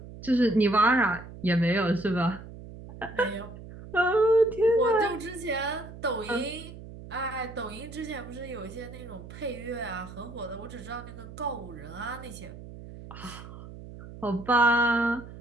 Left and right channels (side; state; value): right; noise; hum, 14 dB below the sound